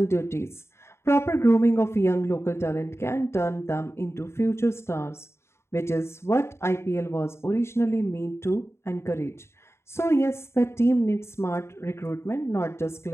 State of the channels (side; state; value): right; late; 0.13 ms